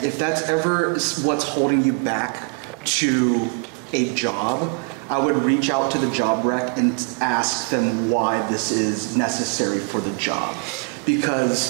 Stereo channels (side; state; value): left; quieter; 36.3 dB